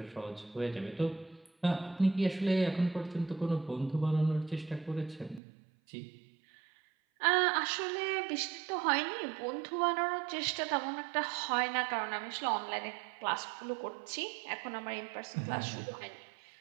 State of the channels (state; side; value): drops out; left; at 5.4 s